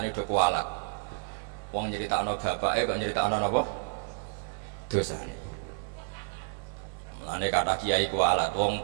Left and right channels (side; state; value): left; silent; digital silence